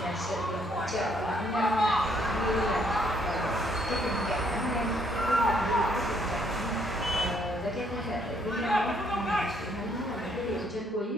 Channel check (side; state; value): both; normal; correlation 0.69